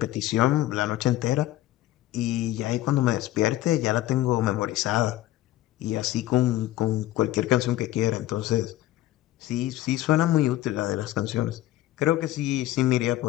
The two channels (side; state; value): right; quieter; 14.9 dB